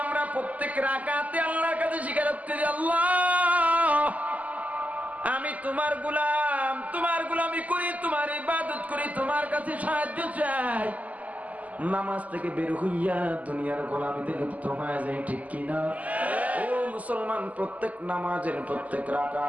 আমরা প্রত্যেক রাকাতে আল্লাহর কাছে স্বীকারোক্তি দিই আল্লাহ আমি তোমার গোলামি করি তোমার ইবাদত করি তোমার কাছে সাহায্য চাই নামাজ থেকে বের হইয়া দুনিয়ার গোলামিতে লিপ্ত হয়ে যায় ঠিক কিনা ও মুসলমান প্রত্যেক নামাজের প্রত্যেক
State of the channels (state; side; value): late; left; 0.075 ms